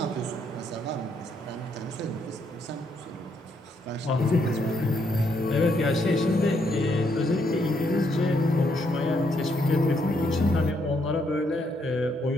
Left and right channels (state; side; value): normal; both; correlation 0.74